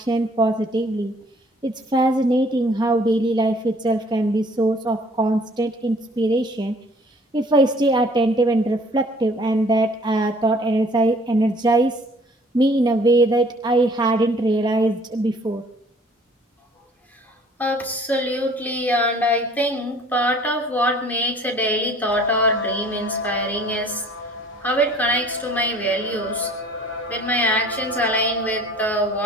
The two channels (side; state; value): both; normal; correlation 0.54